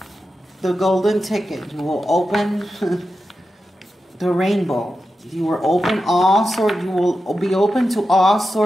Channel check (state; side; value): normal; both; correlation 0.90